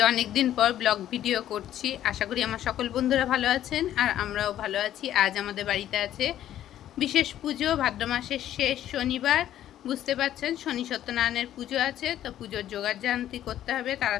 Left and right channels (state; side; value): quieter; right; 11.9 dB